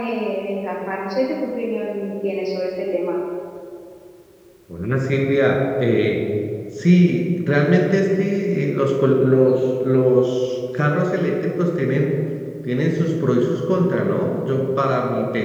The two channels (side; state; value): both; identical; correlation 1.00